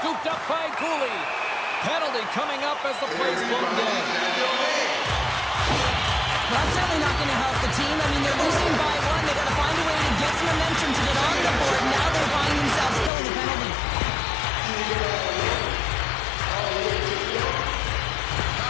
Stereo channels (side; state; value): right; drops out; at 13.1 s